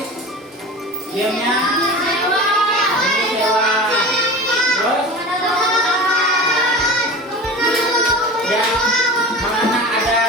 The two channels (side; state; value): both; normal; correlation 0.33